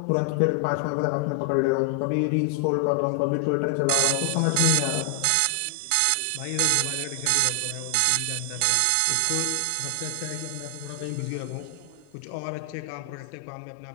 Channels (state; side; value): different; both; correlation 0.00